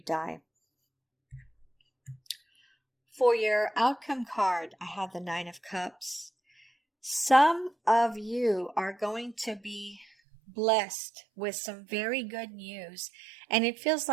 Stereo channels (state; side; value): drops out; left; at 10.1 s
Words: die. For your outcome card, I have the 9 of Cups. Some of you are going to be blessed with some very good news, and it feels